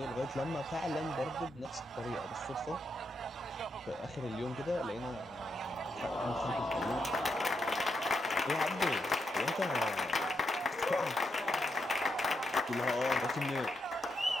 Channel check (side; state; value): both; normal; correlation 0.82